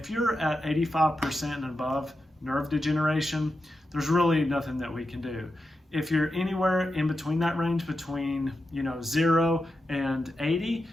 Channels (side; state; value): both; normal; correlation 0.89